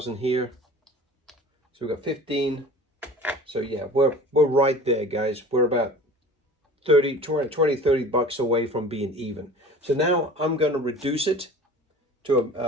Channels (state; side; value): normal; both; correlation 0.42